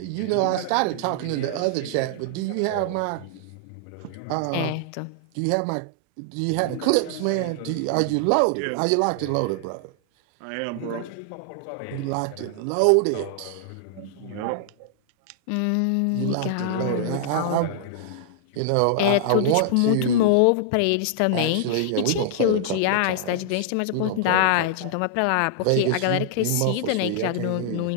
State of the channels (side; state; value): both; different; correlation -0.01